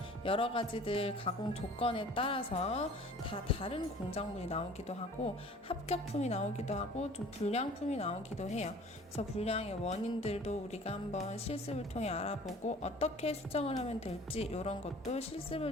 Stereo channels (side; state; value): both; normal; correlation 0.48